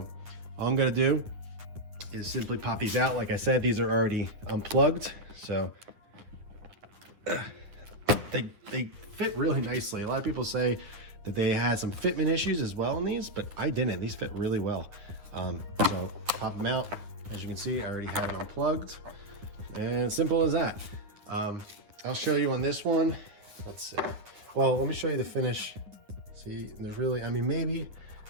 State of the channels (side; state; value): left; late; 9.6 ms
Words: all I'm gonna do is simply pop these out. Like I said, these are already unplugged, so they fit really nicely. A lot of people say that they had some fitment issues as well in these, but I didn't. These fit really well. So pop them out. As you can see, I already have it unplugged, and simple as that. I'll show you on this one. Let's see. Well, let me show you the finish. See, there's really,